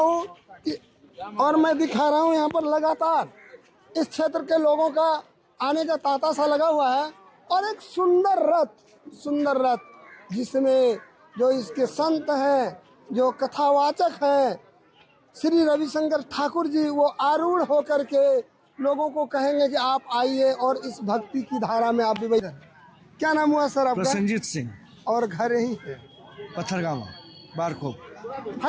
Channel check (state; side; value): identical; both; correlation 1.00